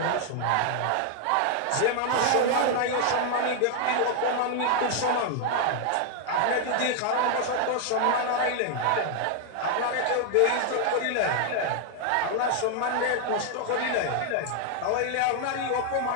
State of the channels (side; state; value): both; different; correlation 0.00